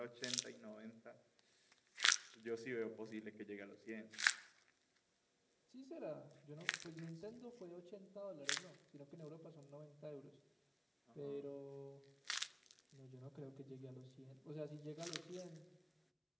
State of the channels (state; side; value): identical; both; correlation 1.00